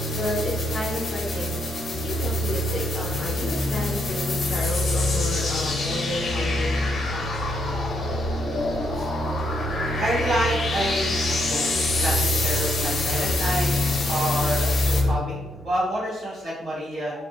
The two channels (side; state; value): both; normal; correlation 0.77